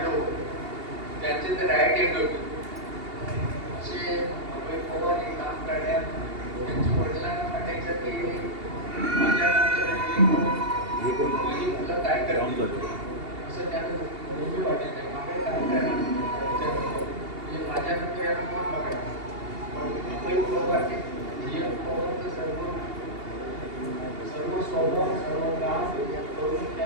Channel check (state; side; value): late; left; 2.8 ms